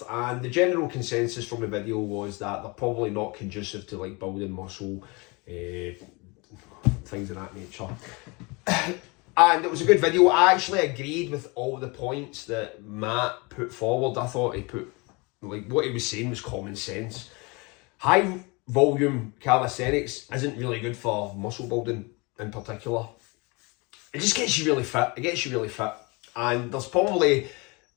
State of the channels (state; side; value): quieter; right; 27.7 dB